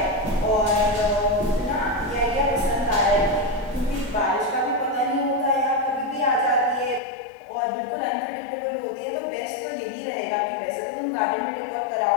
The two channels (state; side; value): drops out; right; at 7.0 s